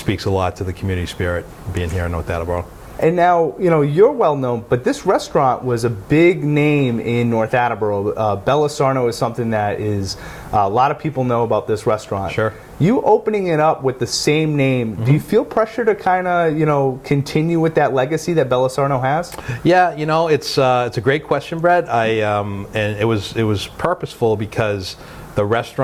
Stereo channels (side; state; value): both; identical; correlation 1.00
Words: a lot to the community spirit being here in North Attleborough. And now, you're well known, but this restaurant was a big name in North Attleborough. Bella Sarno is something that is, a lot of people know about this restaurant. Sure. You opening it up with the same name, do you feel pressure to kind of, continue with that legacy that Bella Sarno has? Yeah, it's a great question, Brett. And it was purposeful because the